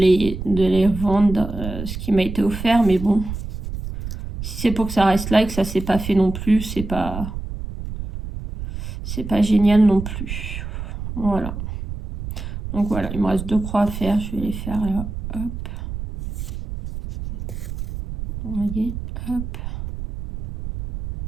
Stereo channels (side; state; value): right; noise; rumble, 7 dB below the sound